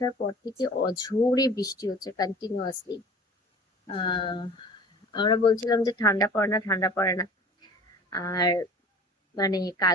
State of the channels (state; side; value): normal; both; correlation 0.43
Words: পর থেকে অঝোরে বৃষ্টি হচ্ছে কন্টিনিউয়াসলি। আহ আমরা বলছিলাম যে ঠান্ডা পড়ে না, ঠান্ডা পড়ে না। আর মানে